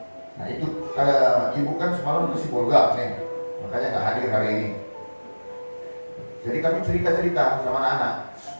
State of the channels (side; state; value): both; inverted; correlation -1.00